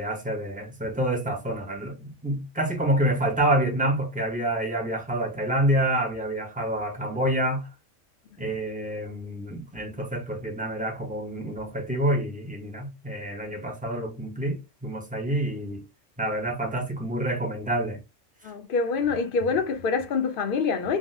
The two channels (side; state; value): both; normal; correlation 0.12